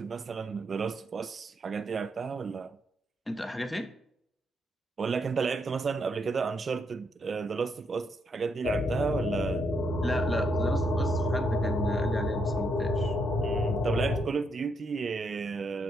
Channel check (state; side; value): normal; both; correlation 0.77